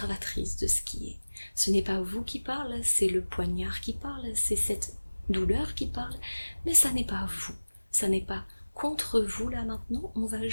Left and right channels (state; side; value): inverted; both; correlation -1.00